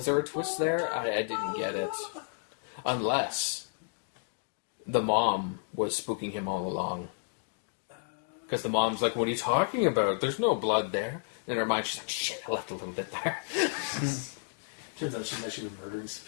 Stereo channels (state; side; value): silent; right; digital silence